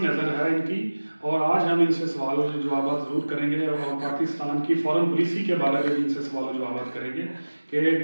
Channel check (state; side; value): inverted; both; correlation -1.00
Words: نظر ہے ان کی اور آج ہم ان سے سوال و جوابات ضرور کریں گے اور پاکستان کی فارن پالیسی کے بارے میں بھی ان سے سوال و جوابات کریں گے کہ